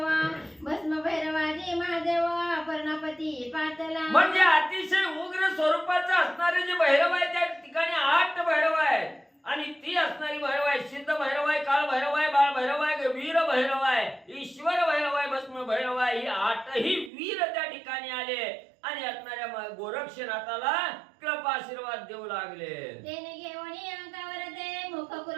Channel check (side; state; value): left; drops out; at 17.1 s